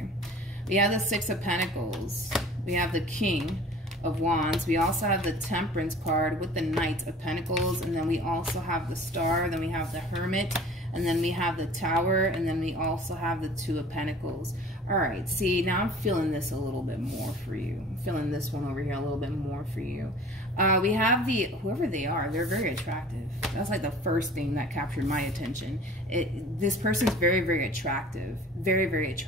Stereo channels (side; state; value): both; normal; correlation 0.45